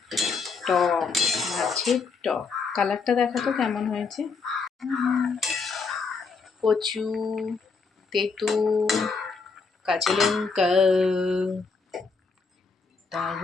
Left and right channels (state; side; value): quieter; right; 4.8 dB